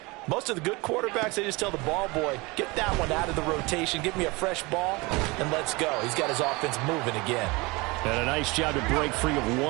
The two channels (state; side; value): quieter; left; 24.8 dB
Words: Most of the good quarterbacks, they just tell the ball boy, get that one out of the rotation, give me a fresh ball, and let's go. He's got his offense moving again. And a nice job to break free of